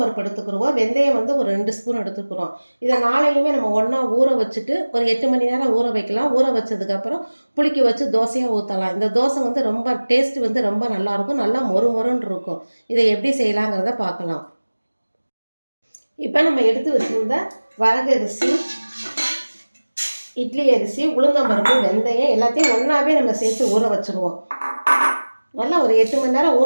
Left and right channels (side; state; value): both; inverted; correlation -1.00